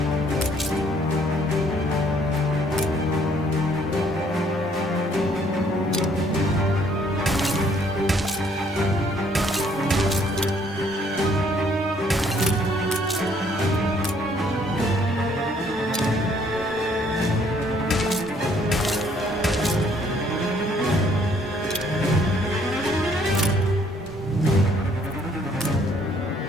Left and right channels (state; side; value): normal; both; correlation 0.64